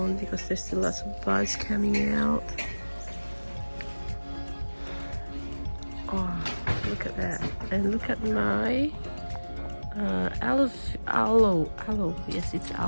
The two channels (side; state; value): both; inverted; correlation -1.00